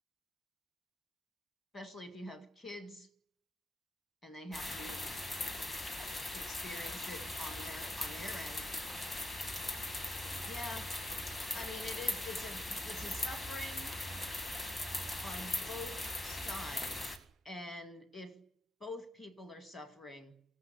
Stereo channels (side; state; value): both; normal; correlation 0.83